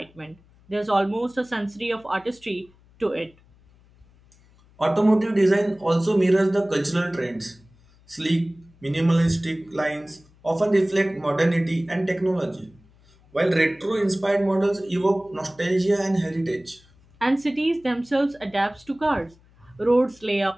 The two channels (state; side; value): noise; left; hum, 29 dB below the sound